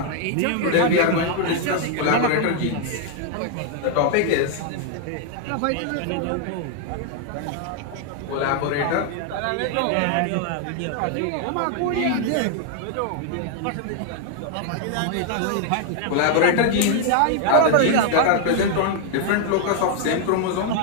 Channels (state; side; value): different; both; correlation 0.00